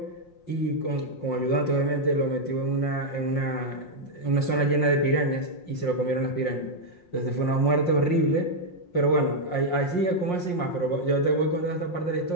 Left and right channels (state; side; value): late; right; 5.6 ms